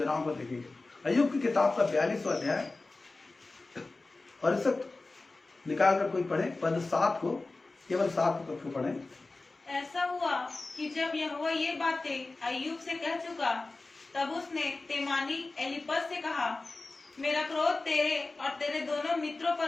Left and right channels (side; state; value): right; quieter; 3.4 dB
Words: को देखेंगे। अय्यूब की किताब का 42वां अध्याय और इस निकाल कर कोई पढ़े पद 7 को, केवल 7 पद को पढ़े। ऐसा हुआ कि जब यहोवा ये बातें अय्यूब से कह चुका, तब उसने तेमानी एलीपज से कहा, मेरा क्रोध तेरे और तेरे दोनों मित्रों